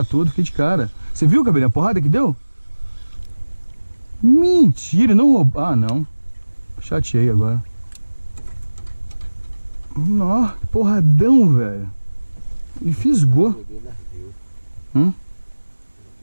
tudo, fiquei de cara. Você viu, cabelinho, a porrada que deu? Mentira, não roubou. Ah, não. Chateei agora. Nó, porradão, velho. E fisgou.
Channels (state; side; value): inverted; both; correlation -1.00